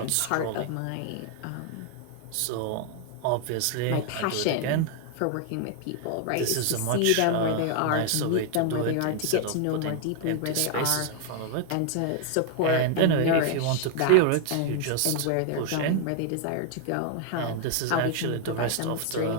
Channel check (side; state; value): both; different; correlation 0.00